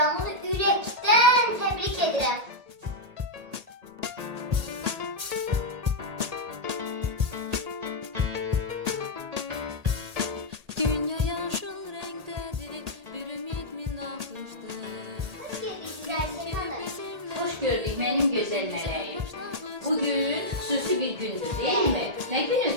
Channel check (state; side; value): late; left; 1.8 ms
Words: ürəkdən təbrik edirəm. Dünya yaşıl renktedir, bir ümit mi nakıştır? Hoş gördük benim güzel meleğim. Bugün xüsusi bir gündür değil mi? Ne